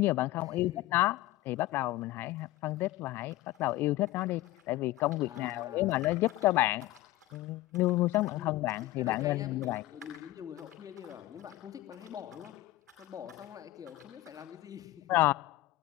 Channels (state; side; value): quieter; right; 17.0 dB